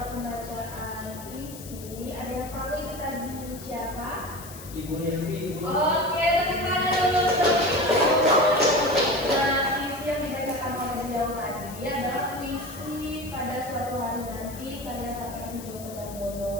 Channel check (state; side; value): noise; left; hiss, 15 dB below the sound